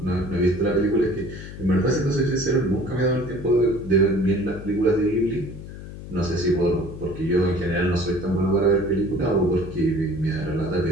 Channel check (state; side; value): noise; left; hum, 12 dB below the sound